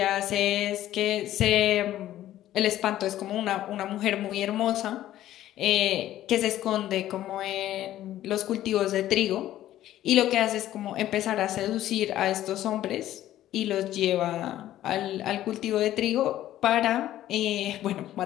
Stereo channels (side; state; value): right; quieter; 13.3 dB